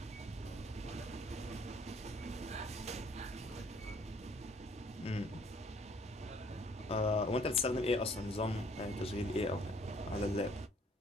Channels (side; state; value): both; normal; correlation 0.60